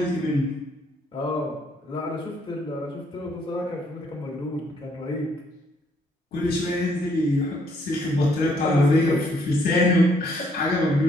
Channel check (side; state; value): both; normal; correlation 0.68